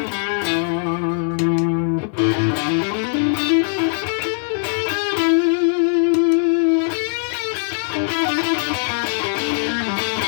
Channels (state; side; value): silent; right; digital silence